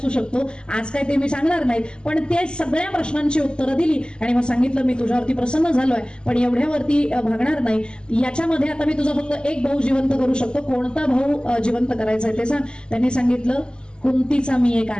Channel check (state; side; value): late; right; 0.049 ms